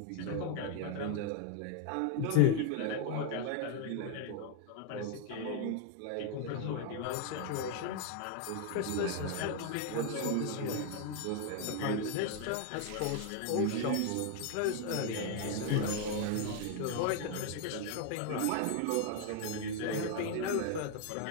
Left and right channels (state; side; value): different; both; correlation 0.00